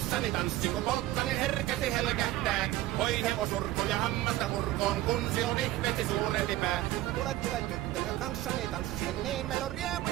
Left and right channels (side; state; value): left; quieter; 15.9 dB